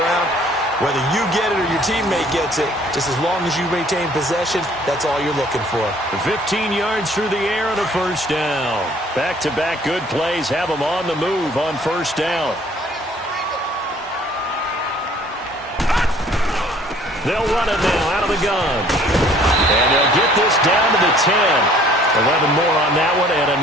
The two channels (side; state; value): both; normal; correlation 0.56